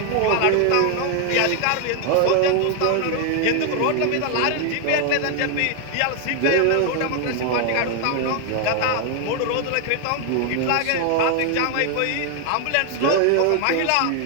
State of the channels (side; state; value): both; different; correlation 0.01